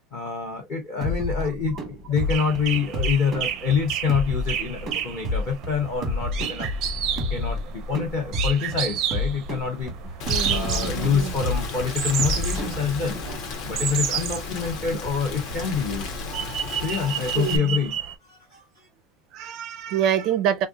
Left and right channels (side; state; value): both; normal; correlation 0.38